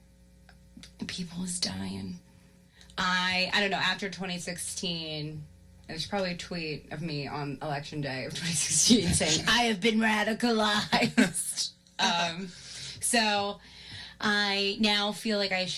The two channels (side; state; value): both; identical; correlation 1.00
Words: people is dying. I don't know, after 2016, there's probably a tweet of me on election day of 2016 saying, I have been radicalized. So I now feel like I